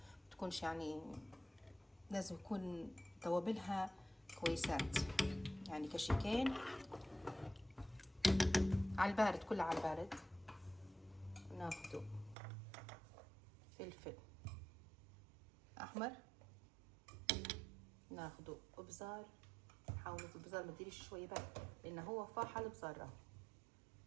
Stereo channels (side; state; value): left; drops out; at 12.4 s